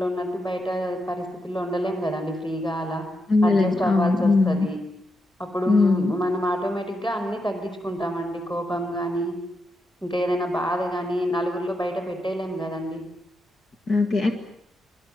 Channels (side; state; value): both; normal; correlation 0.85